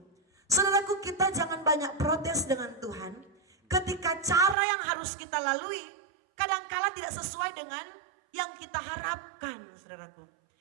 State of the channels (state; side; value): drops out; left; at 4.5 s